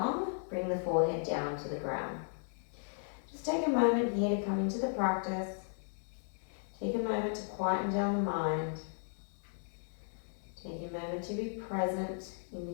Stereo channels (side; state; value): right; silent; 54 dB below the other